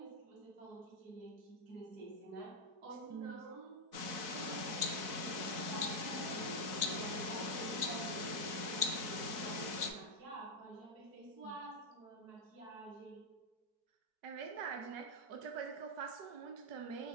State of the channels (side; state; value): left; late; 4.6 ms